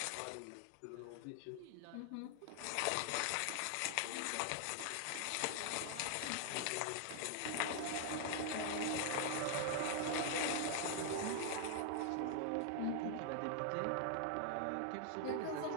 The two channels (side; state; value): both; different; correlation 0.00